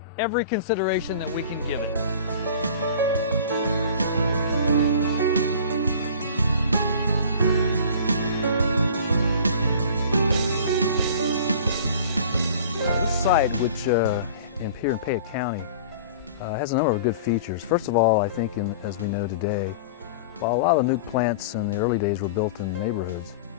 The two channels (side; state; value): both; inverted; correlation -0.42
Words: every consideration that we can give it. This site, which here in Payette County, has a number of good features. First of all, I think, as we know today, while a lot of the nuke plants in the early days were built in neighborhoods,